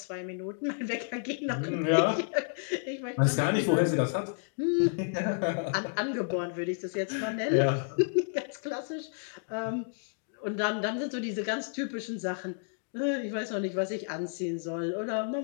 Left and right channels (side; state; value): right; silent; digital silence